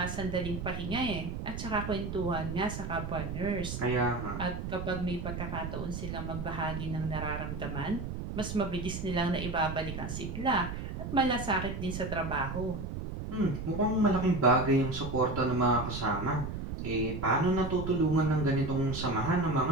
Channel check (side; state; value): right; noise; rumble, 6 dB below the sound